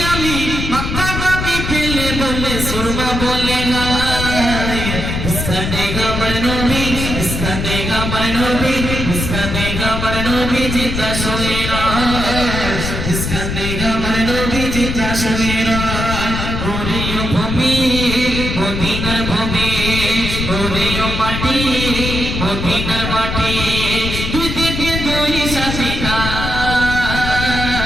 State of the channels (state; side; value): noise; left; rumble, 3 dB below the sound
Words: আমি মক্কা বাবি পেলে বলে সুরমা বলে গায় ইসকানে গামার নবী ইসকানে গামার নবী ইসকানে গামার নবী জিতা শোনেরা ইসকানে গামার নবী জিতা শোনেরা ওরিও ভূমি মদিনার ভূমি ওরিও মাটি মদিনার মাটি দুই দিকে দুই সাথে